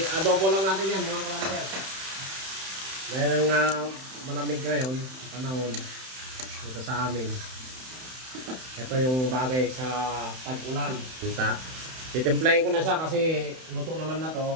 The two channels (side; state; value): left; late; 31 ms